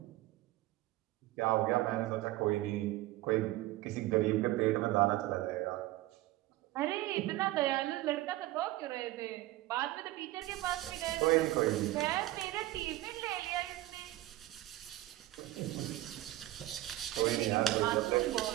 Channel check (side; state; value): left; quieter; 16.8 dB